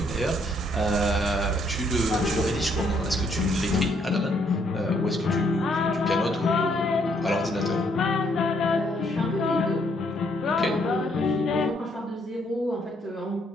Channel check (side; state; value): both; normal; correlation 0.70